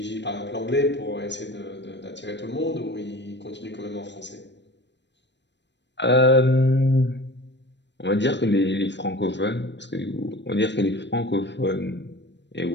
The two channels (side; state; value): right; late; 0.51 ms